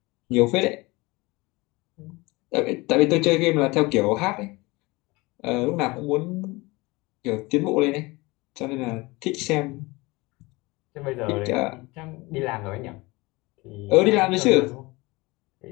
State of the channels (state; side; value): quieter; right; 23.2 dB